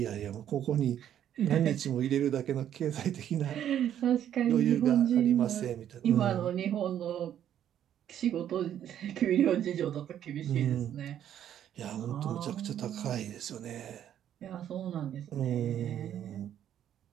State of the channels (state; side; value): quieter; left; 10.4 dB